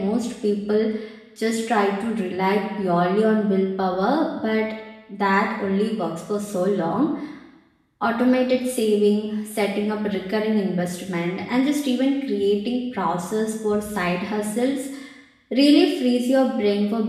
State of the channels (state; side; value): identical; both; correlation 1.00